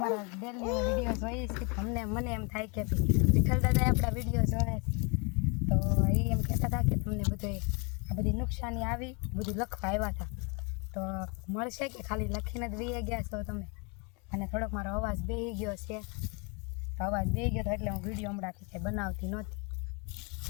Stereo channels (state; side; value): quieter; right; 32.3 dB